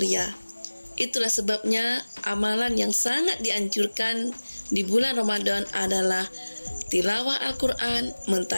Itulah sebabnya amalan yang sangat dianjurkan di bulan Ramadan adalah tilawah Al-Quran,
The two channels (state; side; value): inverted; both; correlation -1.00